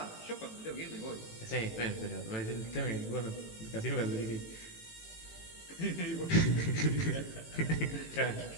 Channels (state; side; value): late; right; 18 ms